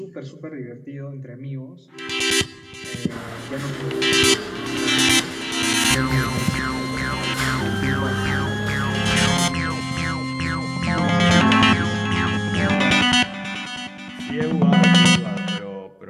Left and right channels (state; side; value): identical; both; correlation 1.00